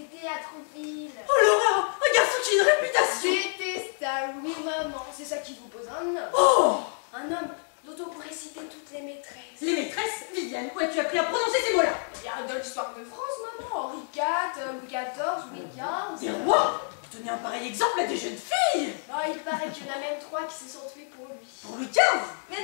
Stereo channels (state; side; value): silent; right; 56 dB below the other